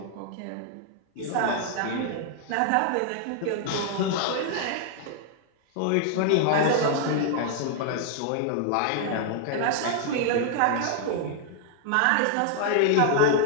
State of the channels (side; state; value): both; different; correlation 0.00